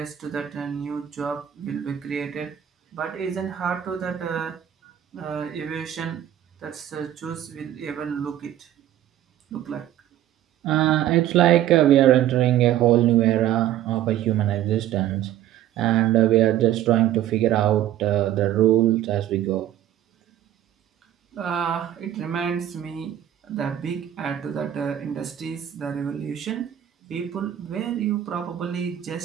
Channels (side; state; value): left; quieter; 11.8 dB